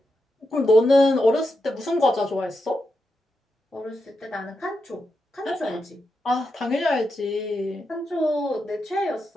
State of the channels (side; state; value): both; normal; correlation 0.86